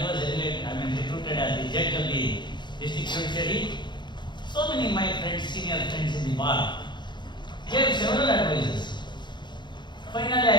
was recruited as the judge of the district judiciary, so many of my friends, senior friends in the bar, gave several advices. Finally,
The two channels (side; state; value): right; late; 0.22 ms